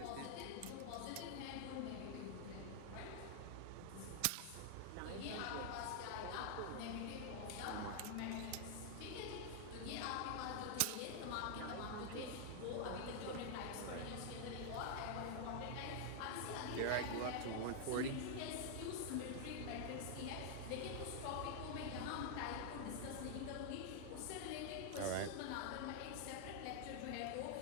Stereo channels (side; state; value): both; different; correlation 0.00